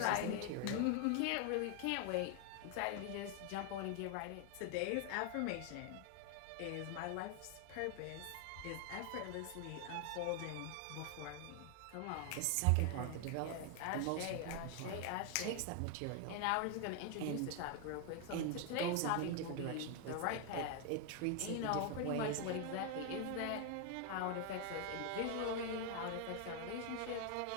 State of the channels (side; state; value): both; different; correlation 0.00